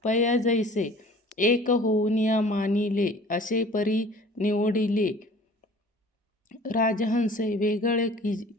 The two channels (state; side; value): normal; both; correlation 0.47